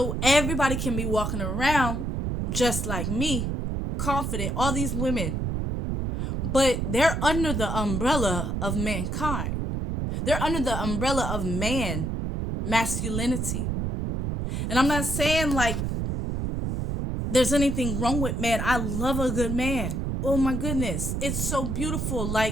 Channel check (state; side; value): noise; right; rumble, 1 dB below the sound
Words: everybody can be walking around just like me, confident, all these women, but they're under the umbrella of mankind. They're under the umbrella of man, masculinity. And I'm not saying like there's anything wrong with man. I love a good man. Oh my goodness. It's so beautiful.